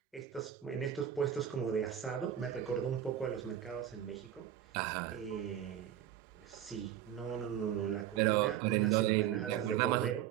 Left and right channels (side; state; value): left; quieter; 10.5 dB